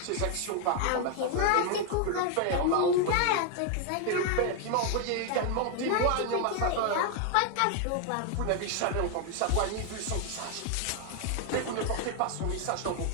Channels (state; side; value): different; both; correlation 0.00